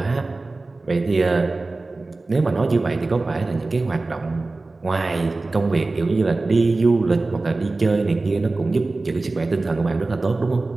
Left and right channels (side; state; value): left; quieter; 3.3 dB